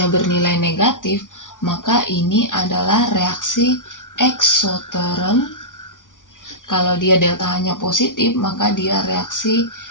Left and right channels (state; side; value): late; right; 0.88 ms